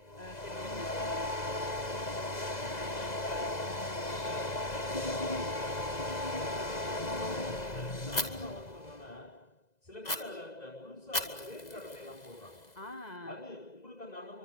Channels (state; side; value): late; right; 2.0 ms